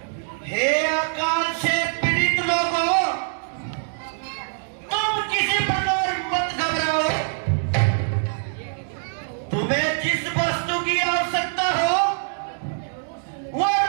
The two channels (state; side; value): silent; left; digital silence